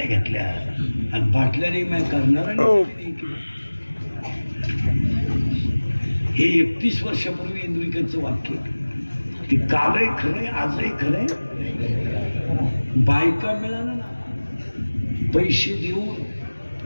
घेतल्या आणि बाटल्याने मैं करणाऱ्याने. हे 31 वर्षापूर्वी इंद्रिकचं वाक्य. ते कालही खरंय, आजही खरंय. बायका मिळाला ना पैसे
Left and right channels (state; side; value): inverted; both; correlation -1.00